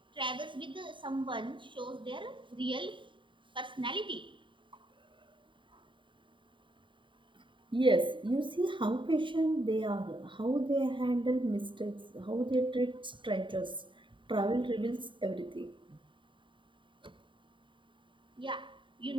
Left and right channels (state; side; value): late; left; 0.24 ms